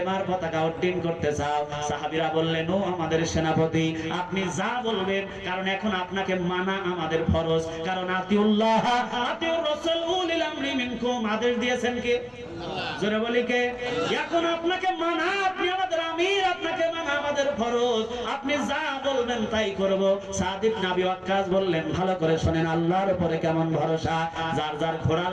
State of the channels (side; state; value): both; identical; correlation 1.00